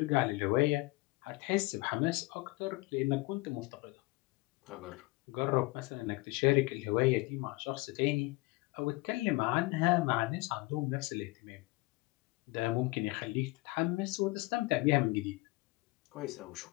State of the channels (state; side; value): quieter; right; 23.0 dB